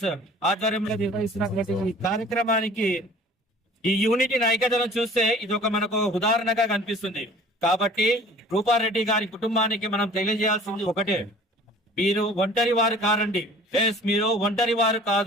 ఆధ్వర్యంలో నిర్వహిస్తున్నటువంటి ఈ కార్యక్రమానికి ఈ యూనిటీని, ఐక్యతను చూస్తే ఇది ఒక మనకు ఉదాహరణగా కనిపిస్తుంది. కాబట్టి రూపారెడ్డి గారి కుటుంబానికి మనం తెలియజేయాల్సింది ఒకటే, మీరు ఒంటరి వారు కారండి. మీరు ఒంటరి వారు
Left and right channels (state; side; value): normal; both; correlation 0.48